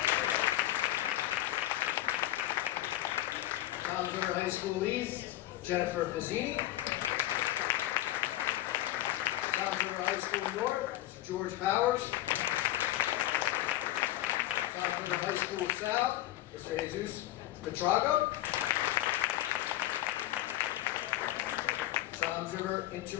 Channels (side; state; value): right; quieter; 15.2 dB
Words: Toms River High School East, Jennifer Fazzini. Toms River High School North, Mr. George Powers. Toms River High School South, Mr. Jesus Petrago. Toms River